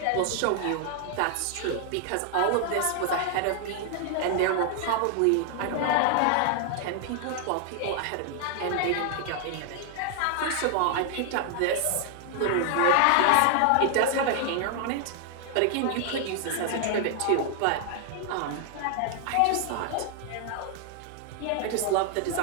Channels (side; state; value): both; different; correlation 0.00